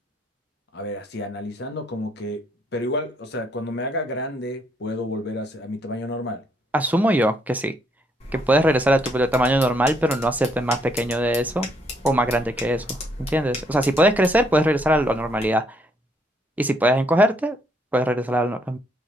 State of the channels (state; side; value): normal; both; correlation 0.71